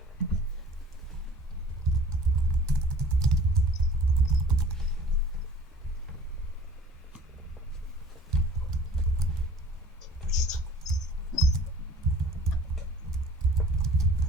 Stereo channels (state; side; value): normal; both; correlation 0.48